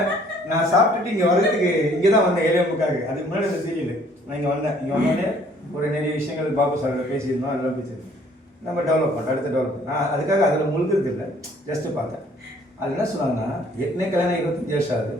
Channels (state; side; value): normal; both; correlation 0.59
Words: நான் சாப்பிட்டுட்டு இங்கே வர்றதுக்கு இங்கே தான் வந்தேன், 7:30. அதுக்கு முன்னாடி அந்த சீரியல் நான் இங்கே வந்தேன். இங்கே வந்தோடனே ஒரு நிறைய விஷயங்கள் பாபு சார் பேசியிருந்தோம். அதெல்லாம் பேசியிருந்தோம். நம்ம டெவலப் பண்ணோம், அடுத்த டெவலப். நான் அதுக்காக அதில் முழுகிறது இல்லை, ஜஸ்ட்டு பார்த்தேன். அது என்ன சொன்னாங்கன்னா, ஏற்கனவே கல்யாணம் 25 வருஷம் ஆகுது,